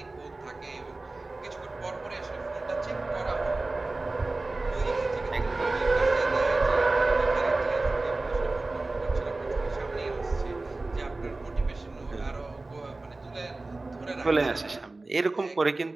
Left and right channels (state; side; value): quieter; left; 3.2 dB